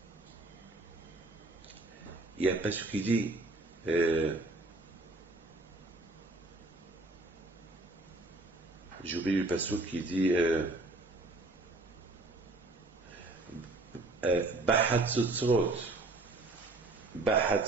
j'ai oublié le passouk qui dit Bahatzotzrot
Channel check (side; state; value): left; quieter; 3.0 dB